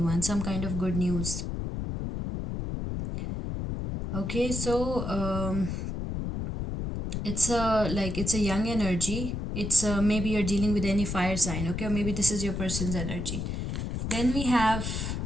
some kind of good news. Okay, so it's a young energy. It's maybe you're dealing with any fire sign. Okay, or maybe this is your person's energy. Then we have,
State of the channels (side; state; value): left; noise; rumble, 3 dB below the sound